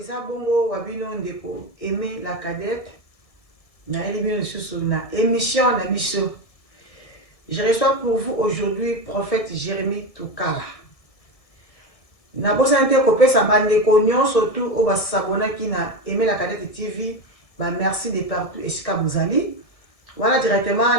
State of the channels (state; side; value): late; right; 1.7 ms